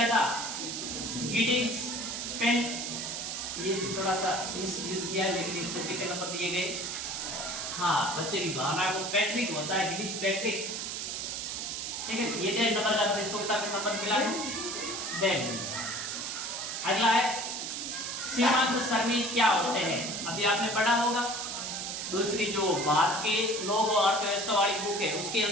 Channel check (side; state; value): right; noise; hiss, 4 dB below the sound